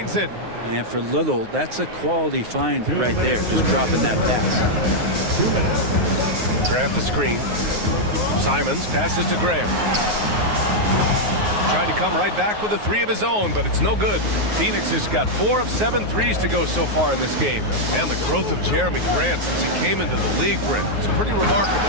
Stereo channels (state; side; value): late; left; 9.5 ms